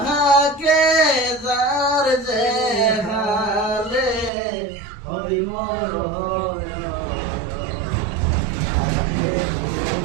যার যে হালে হই মোর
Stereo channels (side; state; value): left; drops out; at 4.3 s